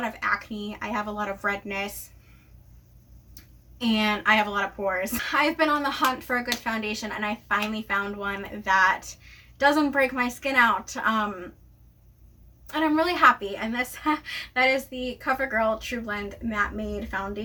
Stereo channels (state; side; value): identical; both; correlation 1.00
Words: of acne. I have a lot of redness. And I have a lot of pores. I've been on the hunt for a good foundation, and I finally found one that doesn't break my skin out. and I'm really happy. And this that is the Covergirl True Blend Matte Made